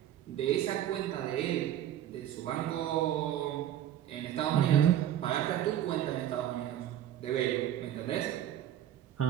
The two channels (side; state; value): left; quieter; 11.4 dB